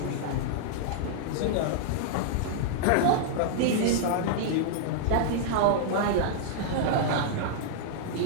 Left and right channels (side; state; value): both; different; correlation -0.02